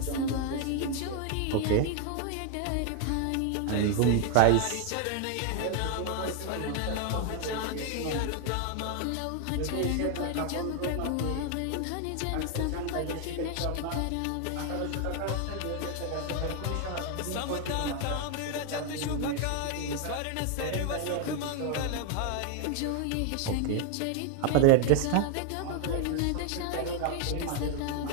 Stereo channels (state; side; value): different; both; correlation 0.01